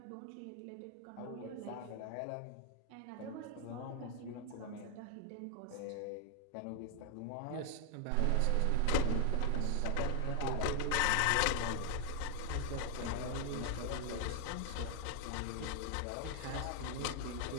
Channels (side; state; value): both; different; correlation 0.00